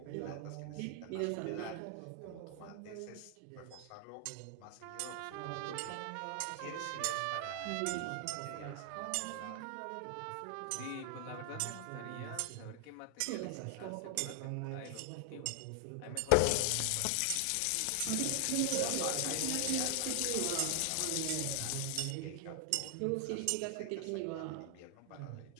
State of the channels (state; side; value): different; both; correlation 0.00